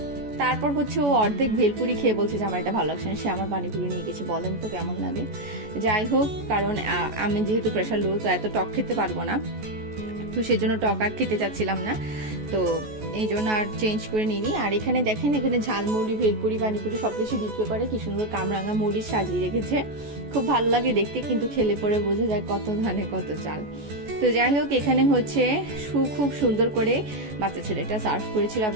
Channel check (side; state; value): left; late; 14 ms